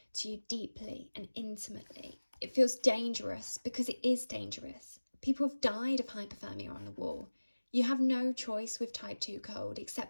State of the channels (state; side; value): inverted; both; correlation -1.00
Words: to you deeply and intimately. It feels dangerous because it is dangerous. People have died of hypothermia on the wall. You have no choice with type 2 cold